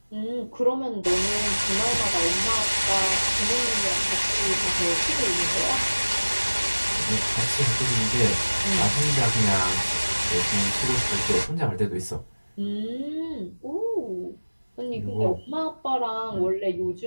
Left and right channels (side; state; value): both; inverted; correlation -1.00